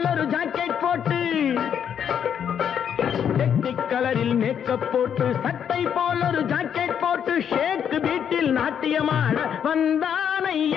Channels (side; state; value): right; quieter; 8.4 dB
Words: ஒரு ஜாக்கெட் போட்டு டெக்னிக் கலரில் மேக்கப் போட்டு சட்டை போல ஒரு ஜாக்கெட் போட்டு ஷேக் வீட்டில் நாட்டியமாட